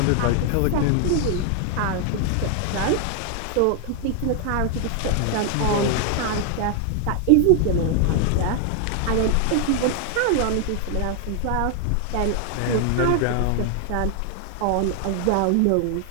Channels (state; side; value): different; both; correlation 0.00